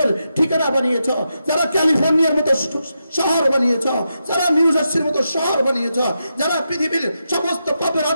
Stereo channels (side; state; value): both; inverted; correlation -0.86